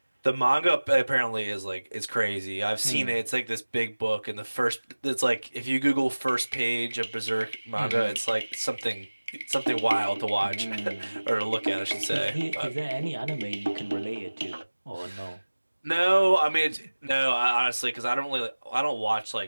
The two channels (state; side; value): inverted; both; correlation -1.00